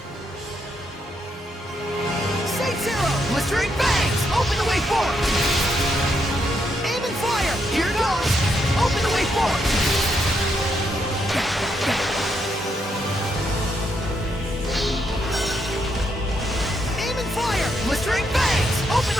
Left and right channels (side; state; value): both; normal; correlation 0.78